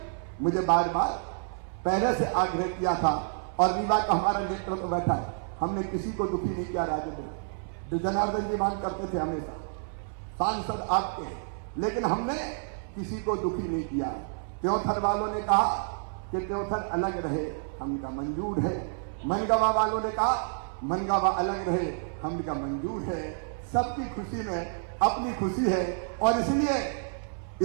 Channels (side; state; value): left; silent; 58 dB below the other